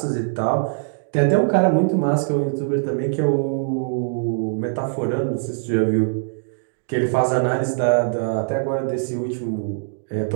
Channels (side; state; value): left; silent; digital silence